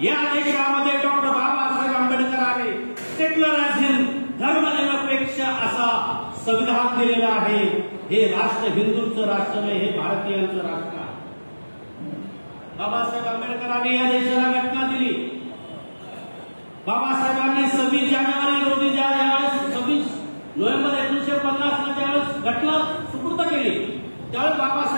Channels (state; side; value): inverted; both; correlation -1.00